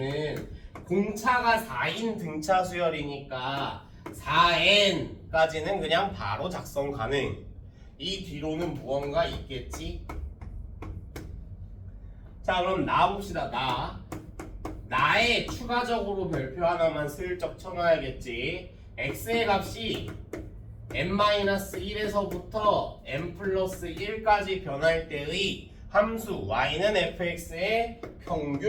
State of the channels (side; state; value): both; identical; correlation 1.00